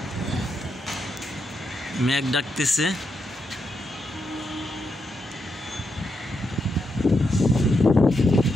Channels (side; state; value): both; normal; correlation 0.83